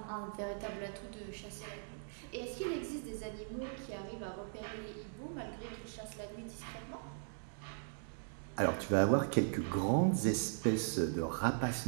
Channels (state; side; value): silent; left; digital silence